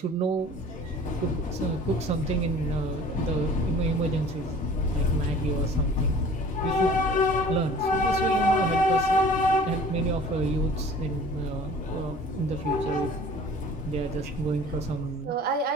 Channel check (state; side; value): normal; both; correlation 0.47